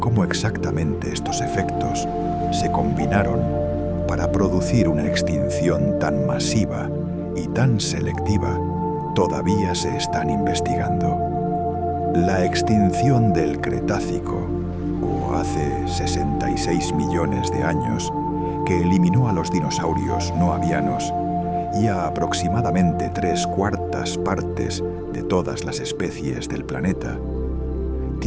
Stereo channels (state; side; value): identical; both; correlation 1.00